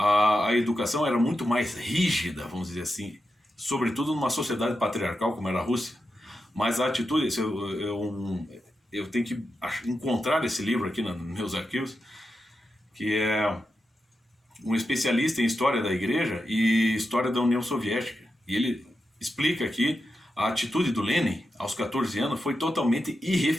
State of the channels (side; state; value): both; normal; correlation 0.88